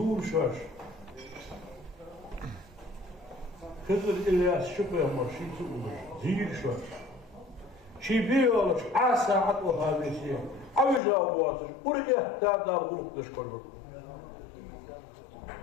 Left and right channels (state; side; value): drops out; right; at 11.0 s